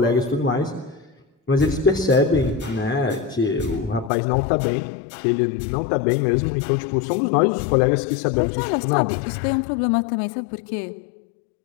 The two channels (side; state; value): right; drops out; at 4.1 s